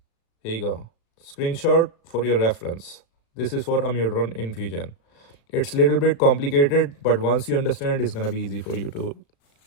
Here you go. Screenshot for your reference. This is for amiodarone infusion. It's a little bit complicated, but once you understand, it's gonna be easy for you to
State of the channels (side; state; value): right; late; 36 ms